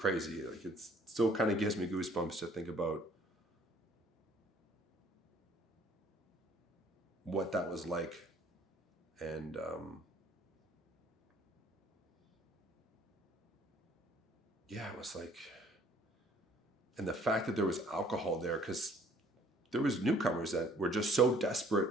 Like it still kind of gives me goosebumps to think about what that was like. And yeah, it was like, and the fact that there was alcohol there, because there was newcomers that were just so desperate.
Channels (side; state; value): both; normal; correlation 0.58